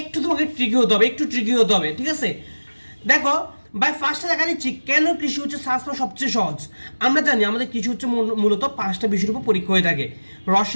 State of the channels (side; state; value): both; inverted; correlation -1.00